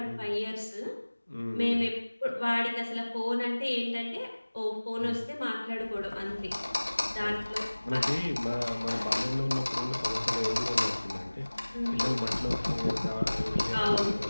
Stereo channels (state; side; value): inverted; both; correlation -1.00